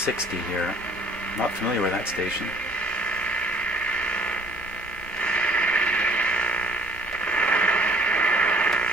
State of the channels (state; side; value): normal; both; correlation 0.57